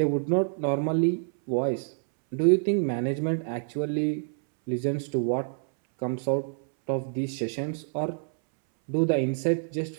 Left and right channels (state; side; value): silent; left; 60 dB below the other